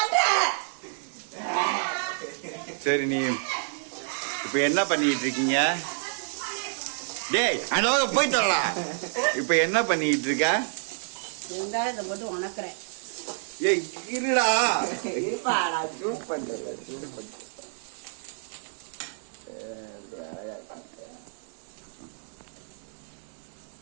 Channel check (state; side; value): silent; left; digital silence